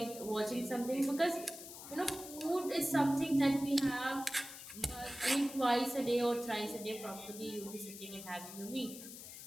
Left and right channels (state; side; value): noise; left; hiss, 12 dB below the sound